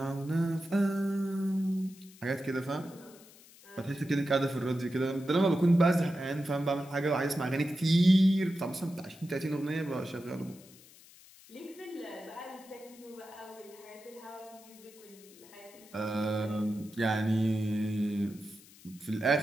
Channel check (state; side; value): noise; left; hiss, 23 dB below the sound